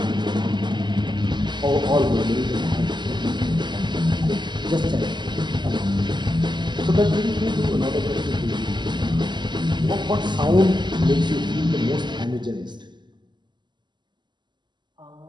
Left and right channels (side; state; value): left; late; 0.21 ms